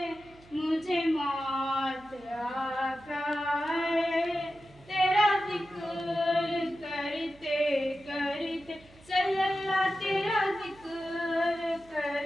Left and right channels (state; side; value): noise; right; hum, 25 dB below the sound